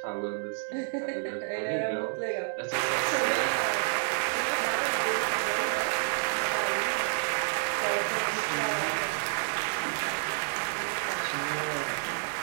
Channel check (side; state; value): left; silent; digital silence